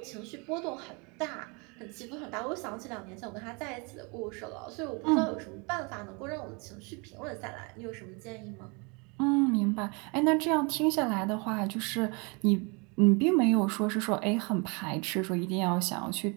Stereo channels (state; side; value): quieter; left; 31.0 dB